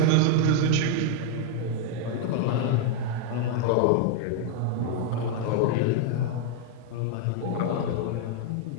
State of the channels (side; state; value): both; different; correlation 0.00